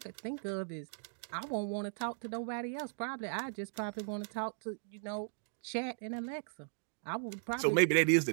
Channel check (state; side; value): silent; left; digital silence